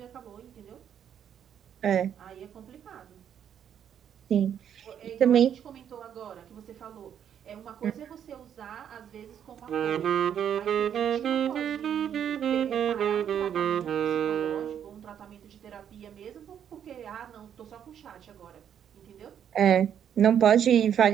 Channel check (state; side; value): quieter; left; 9.0 dB